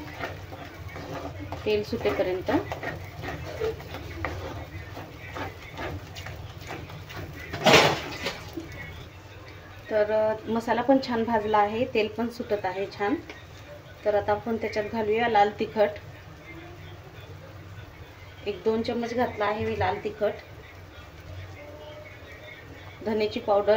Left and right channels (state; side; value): identical; both; correlation 1.00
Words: तेल सुटेपर्यंत। तर मसाला पण छान भाजला आहे, तेल पण सुटत आहे छान। तर आता आपण त्याच्यात घालूया लाल तिखट। 1-2 चम्मच घातला आहे मी लाल तिखट। धनेची